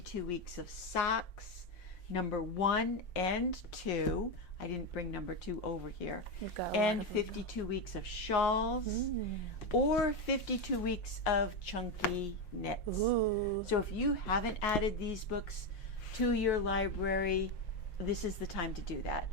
weeks of socks, number 1 and 2. I didn't bring number 2 over here. You've got a lot And of them. 52 weeks of shawls or 52 weeks of chunky knits. Ooh. So if you haven't added these books to your library, this is the time to do that.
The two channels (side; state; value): right; late; 5.6 ms